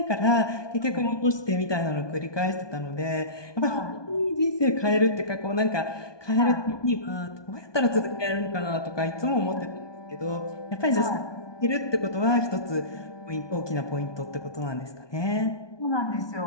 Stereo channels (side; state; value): right; late; 1.2 ms